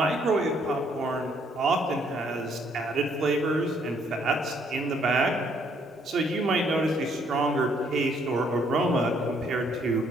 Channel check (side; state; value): both; normal; correlation 0.67